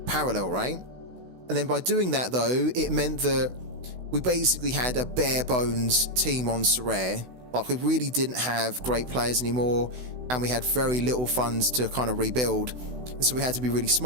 Parallel, right? And then by doing that though, it meant that we basically had a bare bones team on Sorare. Like, we really didn't have great players anymore, and we had very little funds to kind of rebuild. And so we had to be really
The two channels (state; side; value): late; left; 16 ms